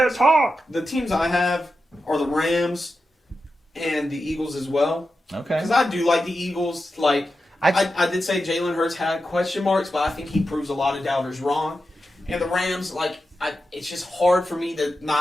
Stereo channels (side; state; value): both; normal; correlation 0.90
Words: teams I have are the Rams and the Eagles as well. Okay. Because I do like the Eagles. Like I did say Jalen Hurts had question marks, but I think he proves a lot of doubters wrong. And the Rams, it's just hard for me to